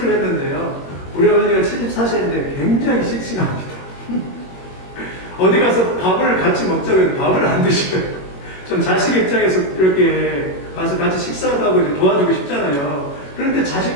했는데요, 우리 어머니가 74세인데 굉장히 씩씩합니다. 어디 가서 밥을 같이 먹자고 해도 밥을 안 드셔요. 좀 자식 입장에서 이렇게 가서 같이 식사도 하고 이렇게 도와주고 싶잖아요. 그런데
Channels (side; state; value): right; late; 21 ms